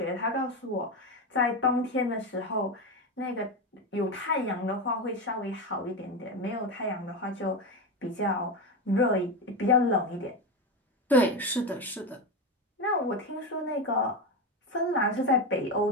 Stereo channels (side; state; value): both; normal; correlation 0.16